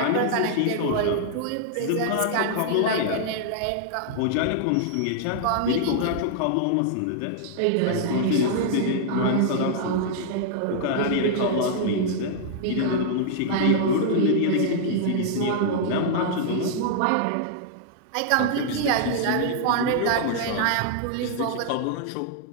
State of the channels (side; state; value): both; different; correlation -0.01